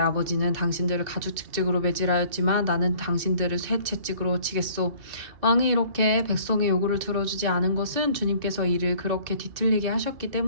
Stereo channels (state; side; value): late; left; 2.6 ms